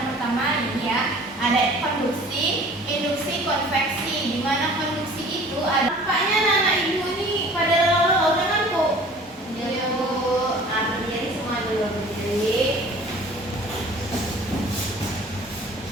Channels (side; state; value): both; normal; correlation 0.48